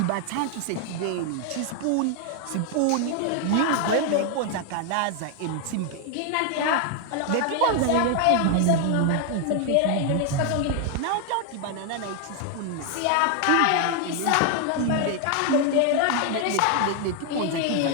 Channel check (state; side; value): different; both; correlation 0.00